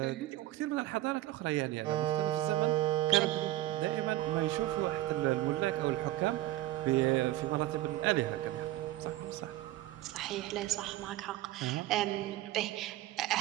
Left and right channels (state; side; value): quieter; left; 15.4 dB